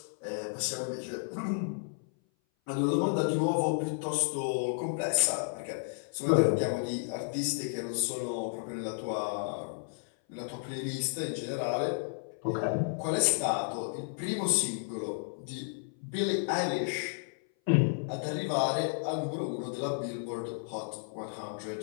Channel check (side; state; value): right; silent; 56 dB below the other